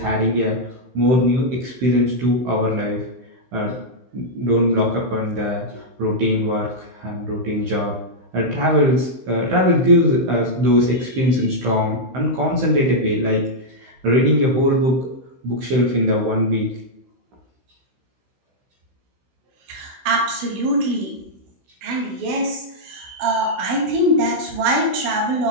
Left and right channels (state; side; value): late; left; 16 ms